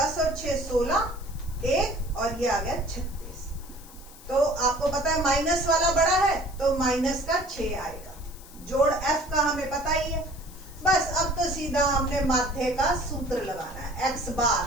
और 6 16, 1 और ये आ गया 36। तो आपको पता है माइनस वाला बड़ा है तो माइनस का 6 आएगा। जोड़ एफ का हमें पता ही है। बस अब तो सीधा हमने माध्य का सूत्र लगाना है। एक्स बार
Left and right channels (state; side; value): noise; left; hiss, 20 dB below the sound